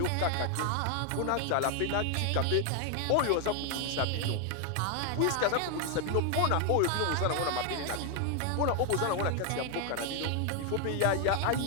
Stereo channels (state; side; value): different; both; correlation 0.01